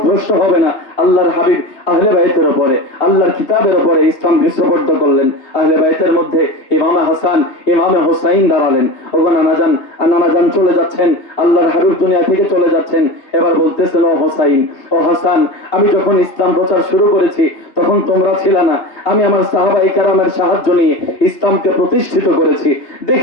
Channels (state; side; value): late; right; 2.8 ms